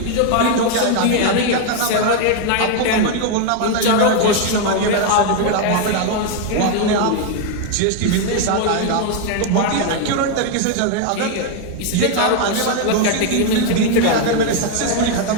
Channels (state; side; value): different; both; correlation 0.01